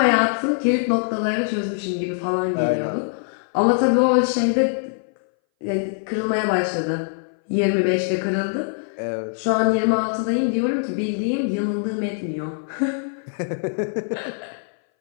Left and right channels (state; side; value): silent; right; 60 dB below the other